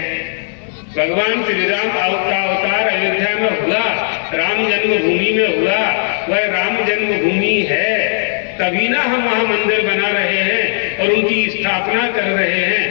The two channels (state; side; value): silent; right; 69 dB below the other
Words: भगवान श्री राम का अवतार अयोध्या में हुआ, राम जन्मभूमि में हुआ। वह राम जन्मभूमि है, तभी ना हम वहां मंदिर बना रहे हैं और उनकी स्थापना कर रहे